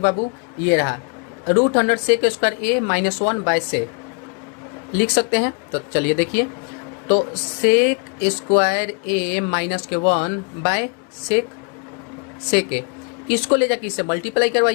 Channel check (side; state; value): right; quieter; 36.5 dB